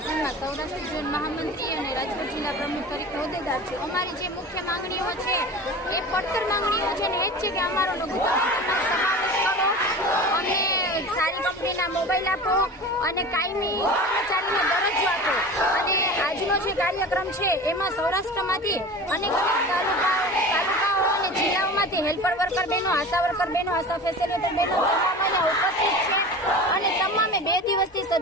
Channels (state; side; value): normal; both; correlation 0.35